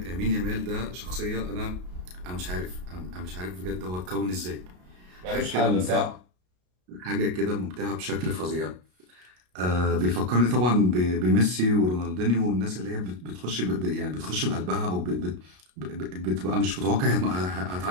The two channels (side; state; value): left; late; 33 ms